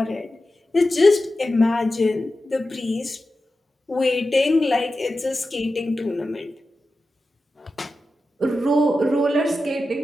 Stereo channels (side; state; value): both; normal; correlation 0.92